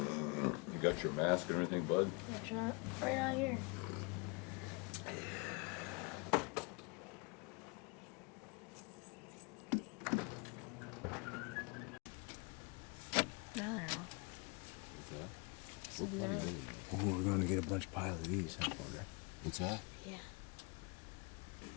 got your mask and everything, bud? That's right out here. No, they're not. What's that? So We're plenty no. early now. Oh, we're gonna get a bunch of pile of these, I wonder. What's that? Yeah.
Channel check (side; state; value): right; quieter; 31.2 dB